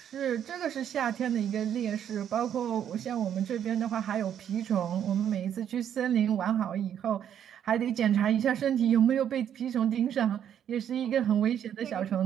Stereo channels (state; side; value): quieter; left; 9.5 dB